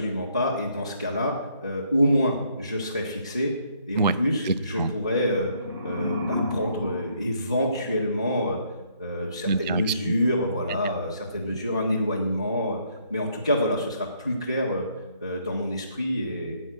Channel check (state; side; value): inverted; both; correlation -0.69